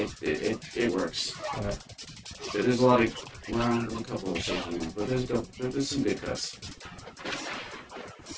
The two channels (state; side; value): identical; both; correlation 1.00